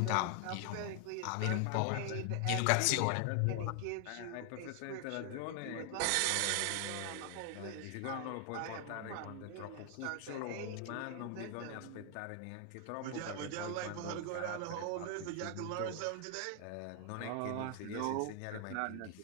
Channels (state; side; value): different; both; correlation 0.00